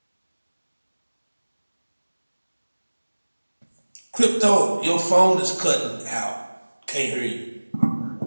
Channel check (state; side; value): inverted; both; correlation -1.00